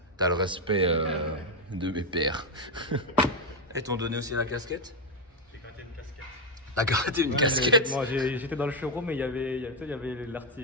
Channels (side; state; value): both; normal; correlation 0.05